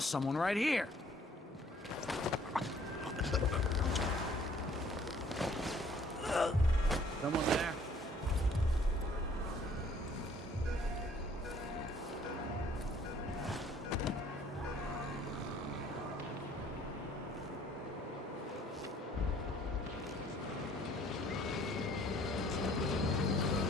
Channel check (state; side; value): normal; both; correlation 0.59